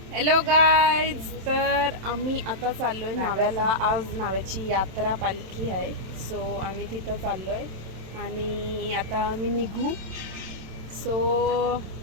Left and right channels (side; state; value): left; late; 27 ms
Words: Hello guys, तर आम्ही आता चाललोय नाव्याला. आज नाव्याची यात्रा पालखी आहे, सो आम्ही तिथं चाललोय आणि आता आम्ही निघू. So